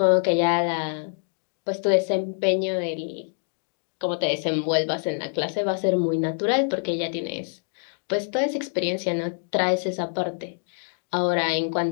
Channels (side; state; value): right; silent; 61 dB below the other